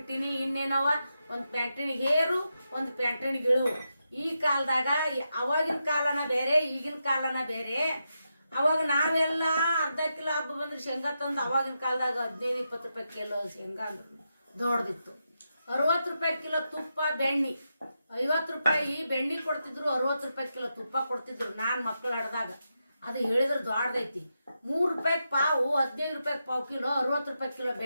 ಇನ್ನೇನವ ಒಂದು ಪ್ಯಾಂಟಿನಿಗೆ ಹೇರು, ಒಂದು ಪ್ಯಾಂಟಿನಿಗೆ ಇಳು. ಈ ಕಾಲದಾಗ ಅವಾಗಿನ ಕಾಲನ ಬೇರೆ, ಈಗಿನ ಕಾಲನ ಬೇರೆ. ಅವಾಗ ನಾವೆಲ್ಲ ಅರ್ಧ ಕಿಲೋ ಹಬ್ಬ ಬಂದ್ರೆ ಶೇಂಗಾ ತಂದು ಅವಾಗಿನ ಕಾಲದಾಗ 15-20 ರೂಪಾಯಿ ಕಿಲೋ ಶೇಂಗಾ ಅಂದ್ರೆ ದೊಡ್ಡದಿತ್ತು. 60 ರೂಪಾಯಿ ಕಿಲೋ ತುಪ್ಪ, ಬೆಣ್ಣೆ 50 ರೂಪಾಯಿ ಬೆಣ್ಣೆ ಕೊಡ್ತಿದ್ರು, 60 ರೂಪಾಯಿ ಕಿಲೋ ತುಪ್ಪ ಕೊಡ್ತಿದ್ರು. ನಾನು ಮಕ್ಕಳು ಆಡ್ದಾಗ ಅದು ಹೇಳಿದ್ರೆ ದೊಡ್ಡದೈತಿ. 3 ರೂಪಾಯಿ ಪಾವು, 15 ರೂಪಾಯಿ ಪಾವು ಕಿಲೋ, 60 ರೂಪಾಯಿ ಕಿಲೋ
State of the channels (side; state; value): both; inverted; correlation -0.86